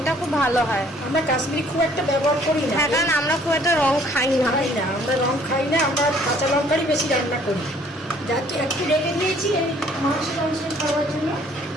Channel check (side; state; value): both; normal; correlation 0.59